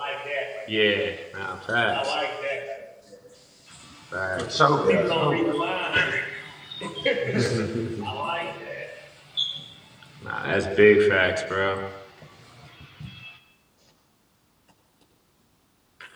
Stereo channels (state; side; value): identical; both; correlation 1.00